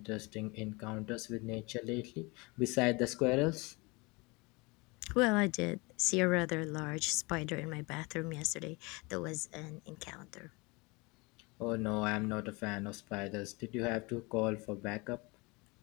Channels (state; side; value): quieter; right; 26.3 dB